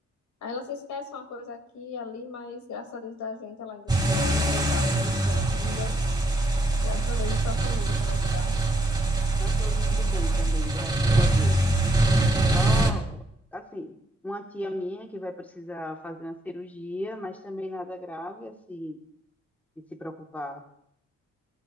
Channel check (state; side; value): normal; both; correlation 0.75